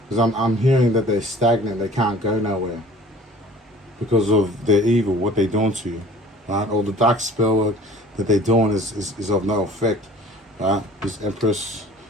Because I'm hearing that they're stagnant. They can't go nowhere because of their evil, what they're doing to you, right? All the dark spell work that they're doing is of no effect, right? This Empress,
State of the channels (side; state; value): both; normal; correlation 0.49